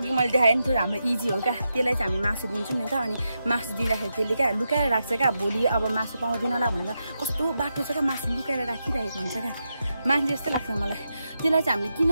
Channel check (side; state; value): both; inverted; correlation -0.87